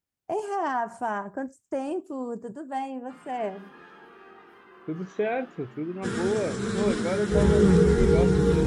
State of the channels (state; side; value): identical; both; correlation 1.00